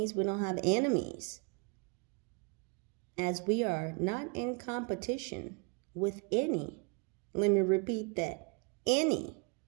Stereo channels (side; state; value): left; quieter; 32.7 dB